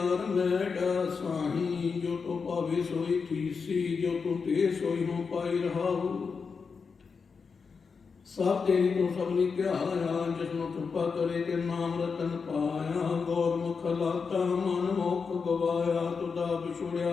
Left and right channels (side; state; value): right; quieter; 5.3 dB